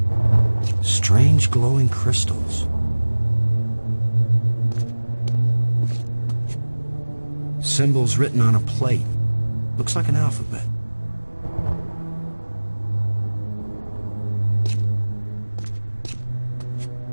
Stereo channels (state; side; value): inverted; both; correlation -1.00